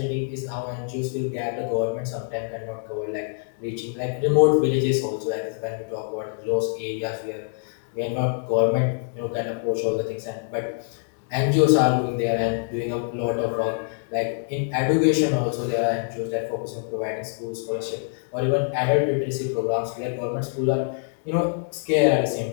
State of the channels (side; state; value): right; silent; 62 dB below the other